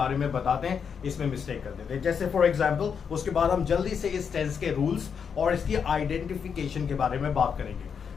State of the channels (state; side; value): quieter; right; 6.7 dB